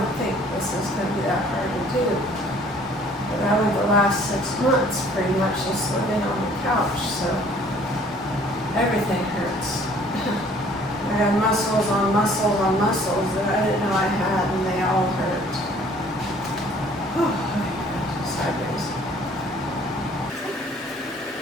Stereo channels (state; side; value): normal; both; correlation 0.56